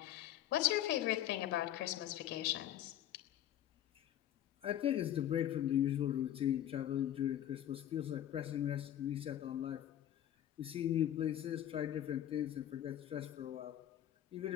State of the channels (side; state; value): right; quieter; 11.6 dB